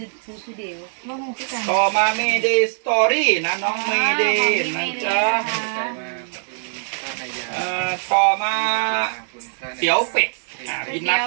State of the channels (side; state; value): left; silent; 63 dB below the other